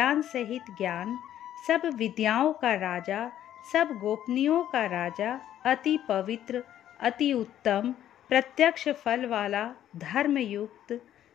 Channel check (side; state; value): right; quieter; 11.4 dB